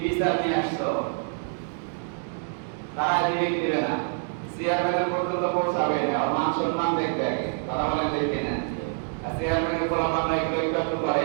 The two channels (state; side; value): silent; left; 61 dB below the other